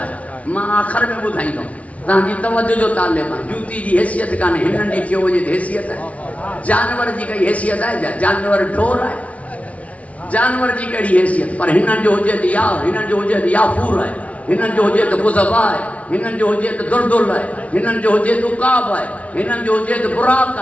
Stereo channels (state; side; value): late; right; 0.066 ms